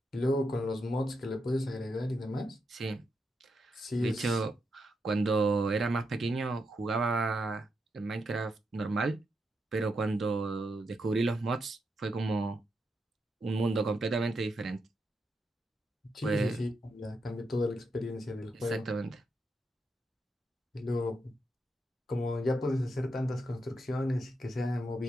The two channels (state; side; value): normal; both; correlation 0.83